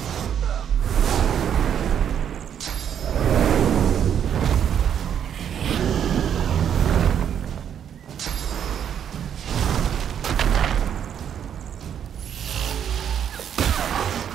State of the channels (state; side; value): quieter; left; 8.9 dB